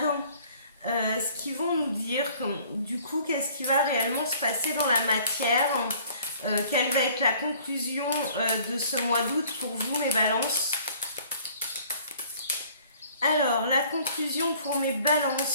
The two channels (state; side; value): inverted; both; correlation -0.54